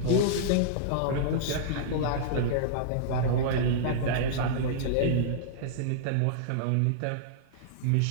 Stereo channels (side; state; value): both; different; correlation -0.02